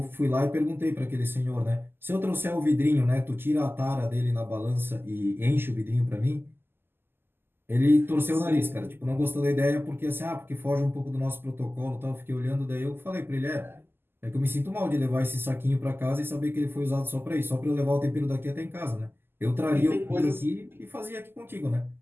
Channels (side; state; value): left; late; 0.11 ms